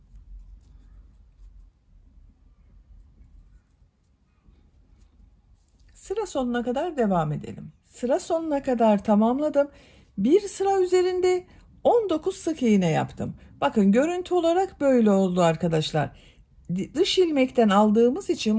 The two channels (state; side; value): identical; both; correlation 1.00